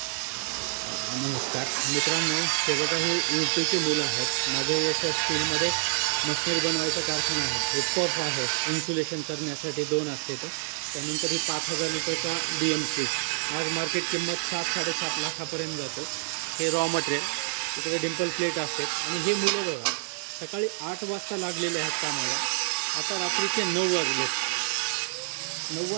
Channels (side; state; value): left; silent; 59 dB below the other